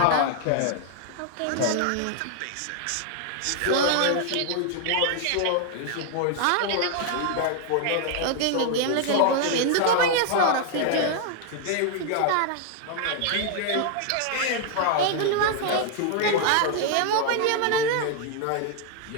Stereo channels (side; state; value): both; different; correlation 0.00